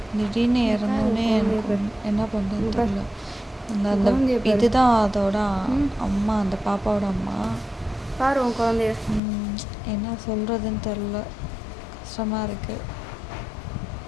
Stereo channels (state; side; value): drops out; right; at 9.2 s